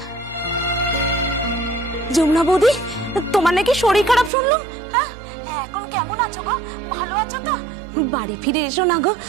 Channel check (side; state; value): left; drops out; at 4.3 s